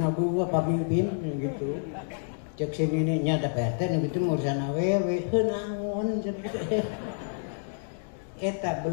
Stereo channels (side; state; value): right; silent; digital silence